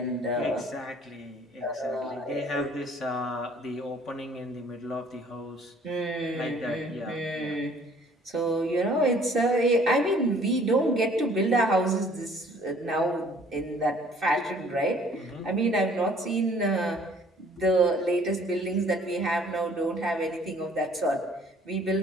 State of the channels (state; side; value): normal; both; correlation 0.56